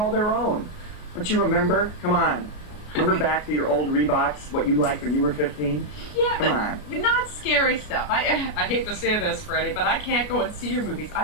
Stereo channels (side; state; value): right; late; 33 ms